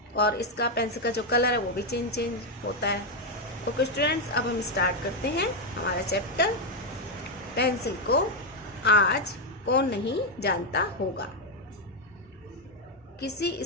और इसका पेंसिल का जो कलर है वो भी चेंज होता है. ओके स्टूडेंट्स, अब हम स्टार्ट करते हैं हमारा चैप्टर. पेंसिल को आज कौन नहीं जानता होगा. किसी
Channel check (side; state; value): both; normal; correlation 0.03